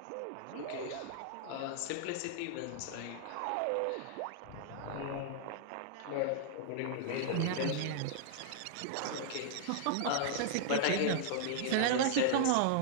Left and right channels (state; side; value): different; both; correlation -0.01